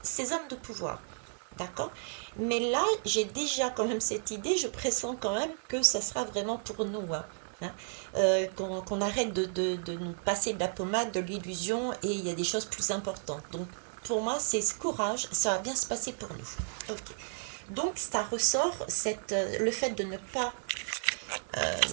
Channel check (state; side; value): silent; left; digital silence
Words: ces hommes de pouvoir. D'accord? Mais là, j'ai déjà quand même cette idée, je pressens quand même que ça sera vraiment pour nous, hein. Hein. Qu'on arrête de nous passer de la pommade, de l'illusion, et il y a des choses plus importantes. Donc, pour moi, c'est ce courage, ça va bien se passer pour nous. Ok. Donc, ça ressort le fait de ne pas euh,